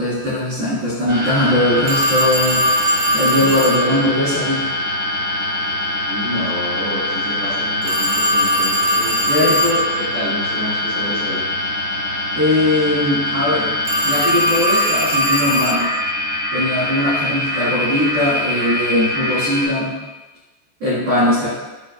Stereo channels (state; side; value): late; left; 14 ms